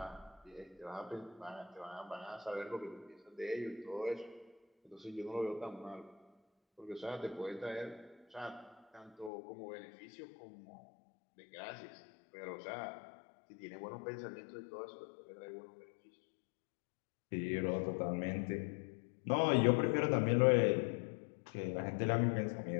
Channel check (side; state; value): right; drops out; at 9.3 s